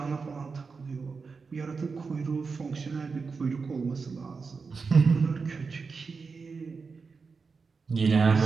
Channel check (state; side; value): quieter; left; 4.8 dB